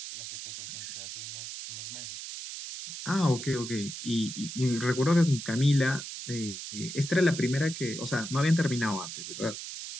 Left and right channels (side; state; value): right; noise; hiss, 8 dB below the sound